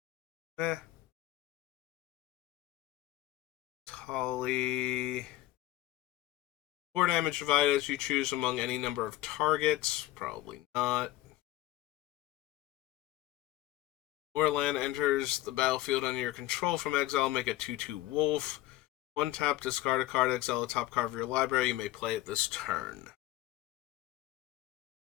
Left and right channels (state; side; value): quieter; right; 16.1 dB